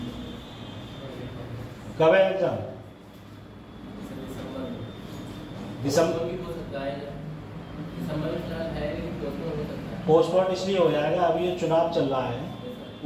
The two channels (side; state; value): both; identical; correlation 1.00